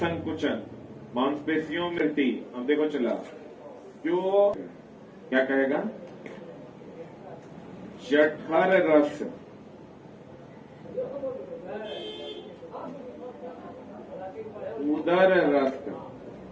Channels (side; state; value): both; identical; correlation 1.00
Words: मांसपेशियों में वृद्धि। अब देखो चला, जो क्या कहेगा? जठर रस, उदर रस